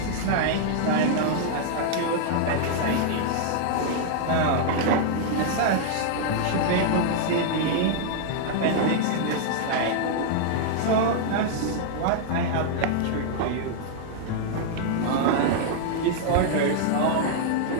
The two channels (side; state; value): both; different; correlation -0.01